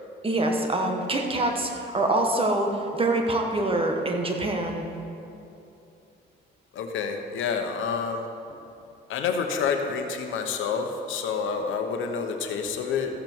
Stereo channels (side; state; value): both; normal; correlation 0.34